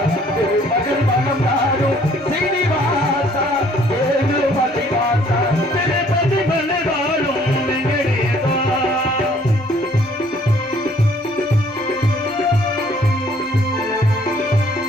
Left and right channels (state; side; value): normal; both; correlation 0.60